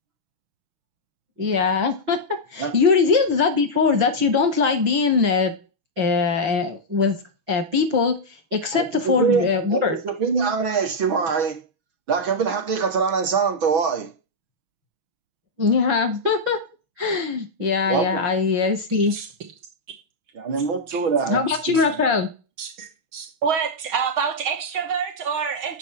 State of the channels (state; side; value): late; left; 6.3 ms